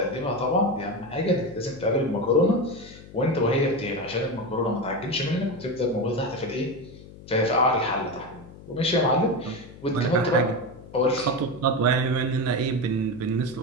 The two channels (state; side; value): noise; left; hum, 18 dB below the sound